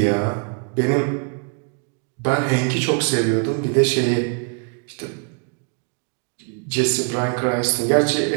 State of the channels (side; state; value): left; quieter; 39.2 dB